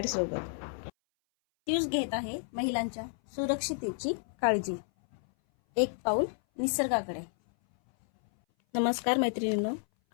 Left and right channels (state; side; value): silent; right; 57 dB below the other